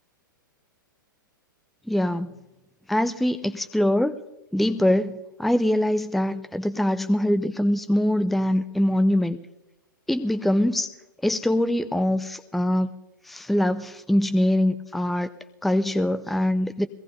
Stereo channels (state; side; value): normal; both; correlation 0.97